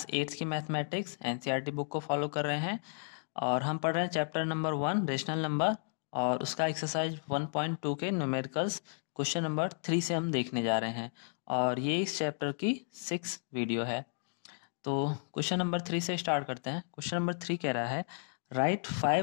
8th की मैथमेटिक्स एनसीईआरटी बुक को फॉलो कर रहे हैं। और हम पढ़ रहे हैं चैप्टर नंबर 1 रेशनल नंबर और उसका एक्सरसाइज 1.2 के न्यूमेरिकल्स क्वेश्चन नंबर 3 से हम देखने जा रहे हैं। और ये इस चैप्टर की 6 वीडियो है। तो क्वेश्चन नंबर 3 से स्टार्ट करते हैं। क्वेश्चन नंबर 3 कह रहा है right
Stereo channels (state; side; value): silent; right; digital silence